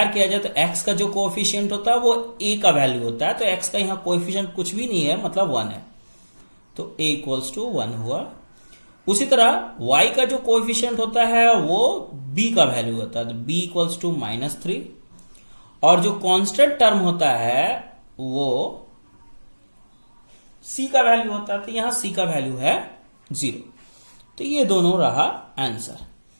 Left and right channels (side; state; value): both; inverted; correlation -1.00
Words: किया जाए तो x का जो कोएफिशिएंट होता है वो a का वैल्यू होता है, तो x का यहां कोएफिशिएंट कुछ भी नहीं है, मतलब 1 है, तो a इक्वल्स टू 1 हुआ। उसी तरह y का जो कोएफिशिएंट होता है वो b का वैल्यू होता है, तो b इक्वल्स टू माइनस 3, और जो कांस्टेंट टर्म होता है वो c का वैल्यू होता है, तो यहां c का वैल्यू है 0। तो ये दोनों रहा आंसर।